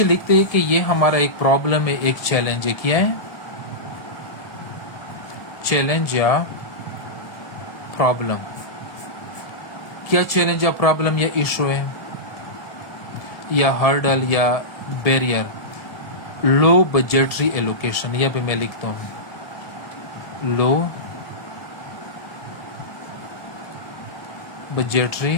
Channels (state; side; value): late; right; 1.7 ms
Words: لکھتے ہیں کہ یہ ہمارا ایک پرابلم ہے، ایک چیلنج ہے۔ کیا ہے؟ چیلنج یا پرابلم۔ کیا چیلنج یا پرابلم یا ایشو ہے یا ہرڈل یا بیریئر؟ لو بجٹری ایلوکیشن، یا بھی میں لکھتا ہوں لو بجٹری